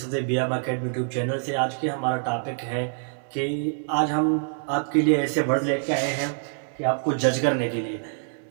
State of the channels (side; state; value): left; silent; 56 dB below the other